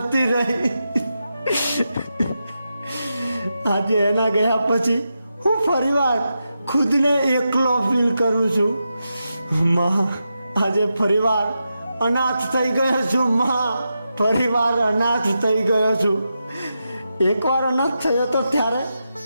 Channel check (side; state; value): both; inverted; correlation -0.88